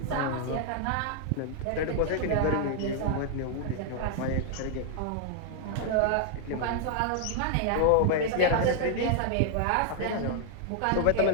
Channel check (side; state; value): both; different; correlation 0.00